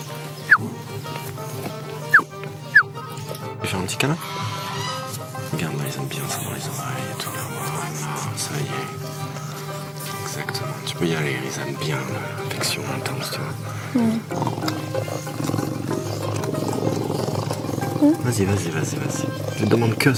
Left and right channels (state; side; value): identical; both; correlation 1.00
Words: Tu veux faire un petit câlin? Regarde, là, ils aiment bien ça dans les oreilles et tout. Là, voilà, ça y est. Exactement. Tu peux y aller, ils aiment bien l'affection intense, tu vois. Vas-y. Je te demande que